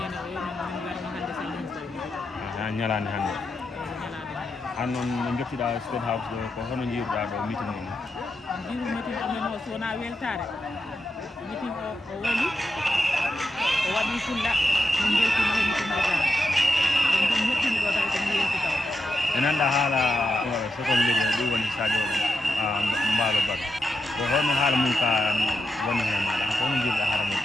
o yomin min garmi hannde salmin tawi ñalande hannde ñalade an noon no jottiɗa State House ɗo ko hono jiiruɗa ɗo meeting ni jiru meeting amen o so wona weltare meeting o woni o waɗi fulla min beltima he meeting o tawa ɗum ɗum hettimi ɗo tawi komi yelti taw e nanɗa haala second lady ɗum woni Sadio Mballo Baro ko hono haala mum ka woni hen maɗa ko hono jiiruɗa haala mum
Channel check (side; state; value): both; normal; correlation 0.87